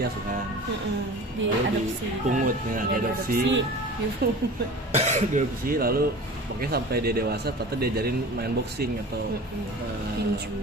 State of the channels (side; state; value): both; normal; correlation 0.38